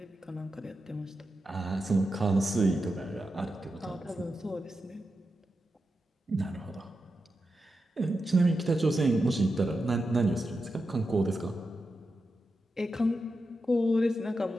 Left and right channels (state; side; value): normal; both; correlation 0.89